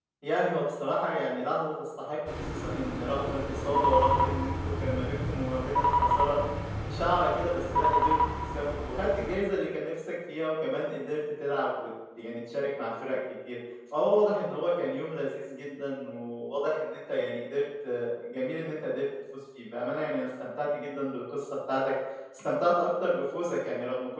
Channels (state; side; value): identical; both; correlation 1.00